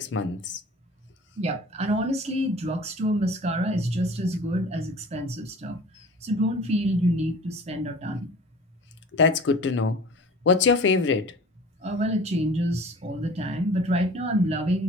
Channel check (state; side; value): normal; both; correlation 0.43